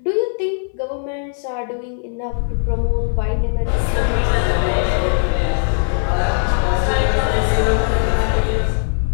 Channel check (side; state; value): right; silent; 63 dB below the other